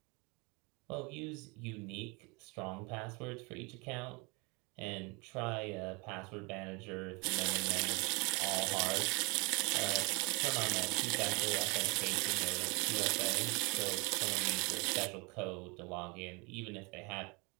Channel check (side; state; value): left; quieter; 28.8 dB